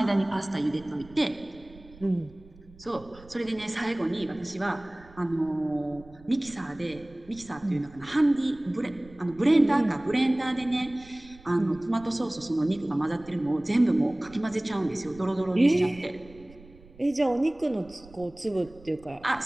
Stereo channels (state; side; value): noise; right; rumble, 22 dB below the sound